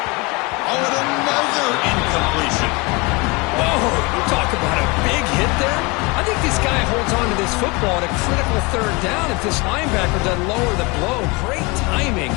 Oh, and another incompletion. Oh, talk about a big hit there. I think this guy holds on to this football at a critical third down if this linebacker doesn't lower the blow. Great timing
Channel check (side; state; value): right; quieter; 26.7 dB